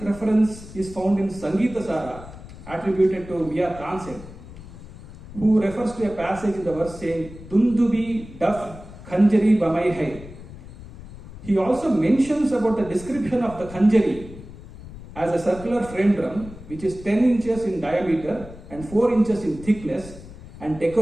reference is found in Sangeeta Sara, attributed to Mia Tansen, who refers to a passage in the verse saying, Dundubi daf khanjari bamai hai. He also mentions about the description of the khanjari as a circular frame drum which is 10 inches in diameter and 4 inches in thickness and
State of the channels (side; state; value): left; noise; rumble, 16 dB below the sound